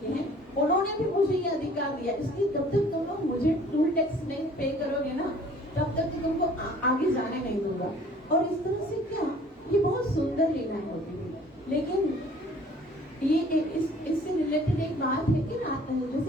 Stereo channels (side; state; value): both; normal; correlation 0.53